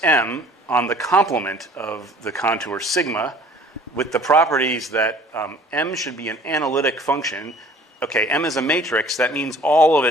M on the complement of the contour sigma with the properties that M should be an analytic function. Okay, M is a matrix. That means all of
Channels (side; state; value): both; normal; correlation 0.51